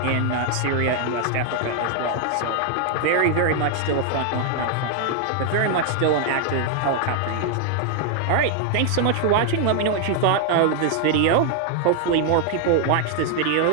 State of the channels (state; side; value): different; both; correlation 0.00